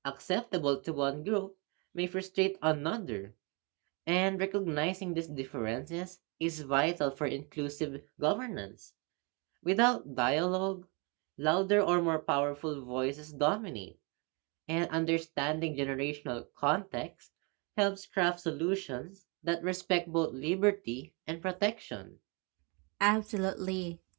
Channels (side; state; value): left; quieter; 31.9 dB